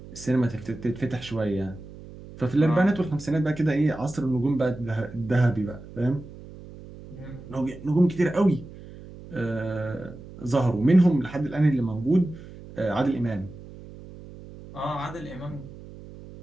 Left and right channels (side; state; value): right; noise; hum, 16 dB below the sound